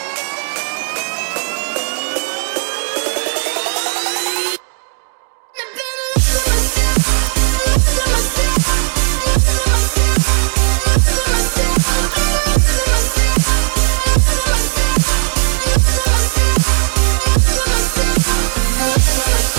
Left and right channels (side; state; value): left; silent; digital silence